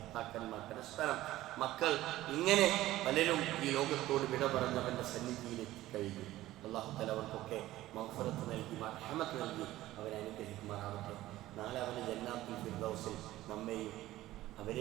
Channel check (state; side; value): quieter; left; 15.7 dB